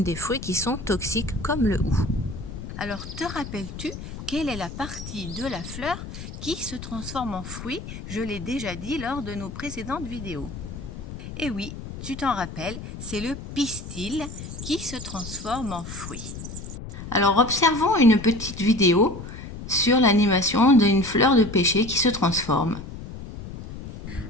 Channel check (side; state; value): left; noise; rumble, 10 dB below the sound